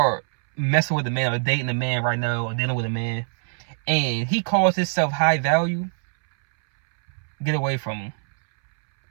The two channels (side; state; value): left; silent; 63 dB below the other